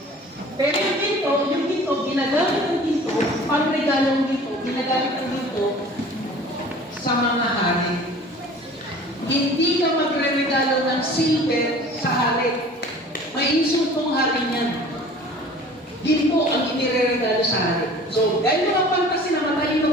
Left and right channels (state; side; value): normal; both; correlation 0.45